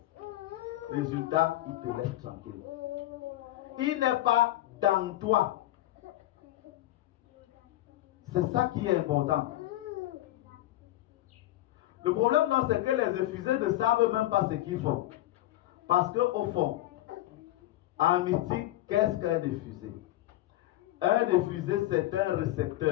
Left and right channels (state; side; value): quieter; right; 15.4 dB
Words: Résultat, il te laisse tranquille. Il n'est pas dans toi. C'est ça qui est important. Le problème, c'est que les effusés ne savent même pas ce qu'ils font. Parce qu'au fond, en mystique, qu'est-ce qu'un effusé? Un effusé, c'est un